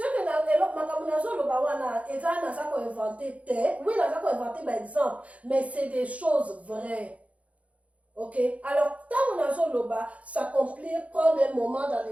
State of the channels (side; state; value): left; late; 0.066 ms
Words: que na elok makamunazo lo ba wana ezana ça ko inventé oui na ça ko inventé par exemple mais c'est des choses vraies. Ok, alors, tant on a Zoloba, s'accomplir, prendre un moment dans